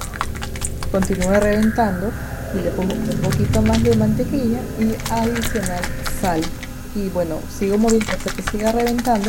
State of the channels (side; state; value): both; identical; correlation 1.00